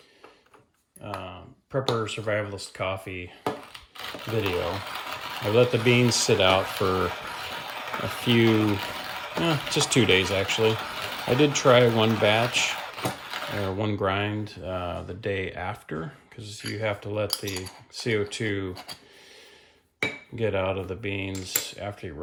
Prepper Survivalist Coffee video. I let the beans sit out for a few, just 2 days actually. I did try one batch or one grind the day after because you have to let the CO2 get out of the beans after you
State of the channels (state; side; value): identical; both; correlation 1.00